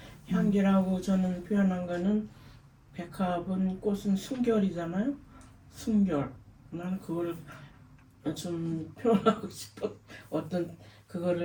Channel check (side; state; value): both; identical; correlation 1.00